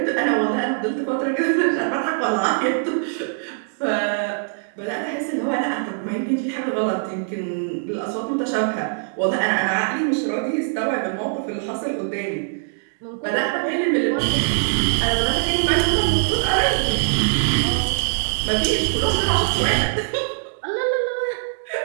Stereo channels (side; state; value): left; silent; digital silence